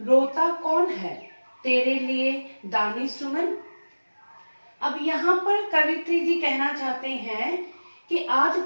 रोता कौन है तेरे लिए दानी सुमन। अब यहाँ पर कवित्री जी कहना चाहते हैं कि आज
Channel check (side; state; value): both; inverted; correlation -1.00